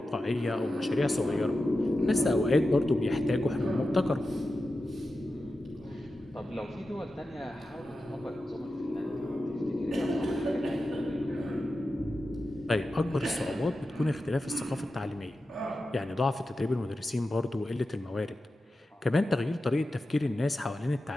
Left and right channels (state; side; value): normal; both; correlation 0.92